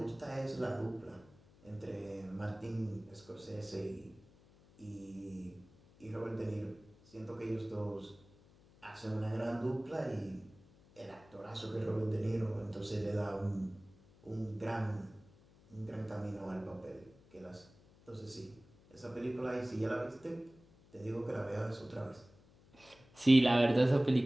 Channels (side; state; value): left; noise; hum, 26 dB below the sound